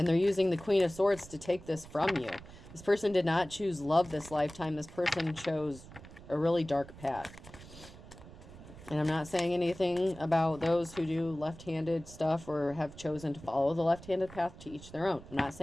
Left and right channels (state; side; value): noise; right; rumble, 17 dB below the sound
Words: they're using the Queen of Swords to take this from you. This person did not choose love this lifetime. This person chose a really dark path. And I'm not saying anything about those who do left-handed stuff or have chosen to follow the left-handed path, to each their own. I'm not